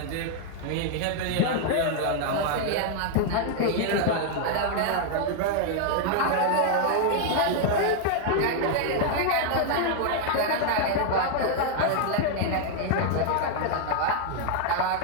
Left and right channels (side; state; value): both; different; correlation 0.00